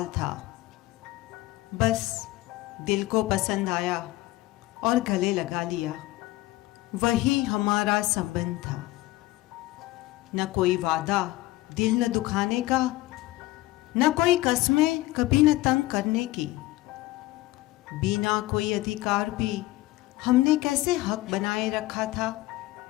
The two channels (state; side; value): quieter; right; 18.2 dB